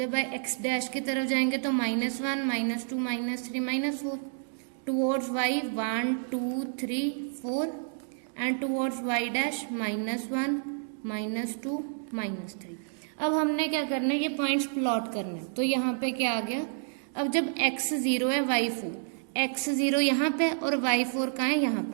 x डैश की तरफ जाएंगे तो -1 -2 -3 -4, towards y 1 2 3 4 and towards y dash -1 -2 -3। अब हमने क्या करना है, ये पॉइंट्स प्लॉट करने हैं। तो यहाँ पे क्या आ गया, अब जब x 0 है y 4, x 0 यहाँ पे और y 4 कहाँ है, यहाँ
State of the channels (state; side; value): silent; left; digital silence